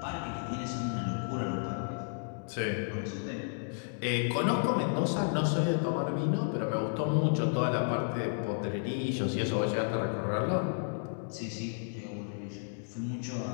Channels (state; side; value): silent; right; digital silence